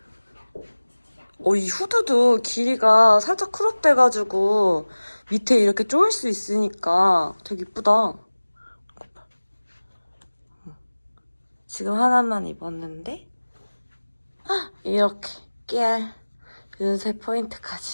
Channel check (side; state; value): both; inverted; correlation -1.00